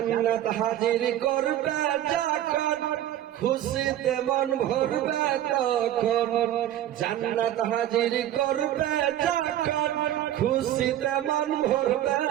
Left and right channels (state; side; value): quieter; left; 12.2 dB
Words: হাজির করবে যখন, খুশিতে মন ভরবে তখন। জান্নাত হাজির করবে যখন, খুশিতে মন ভরবে